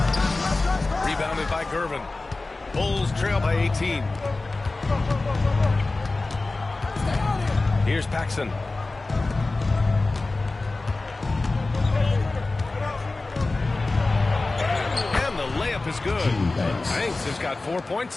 Rebounded by Gervin. Bulls trail by 18. Here's Paxson. And the layup is good. Banks has got 4 points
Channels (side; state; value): right; quieter; 3.3 dB